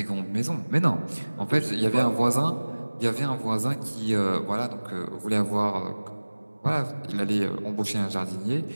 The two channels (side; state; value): both; inverted; correlation -1.00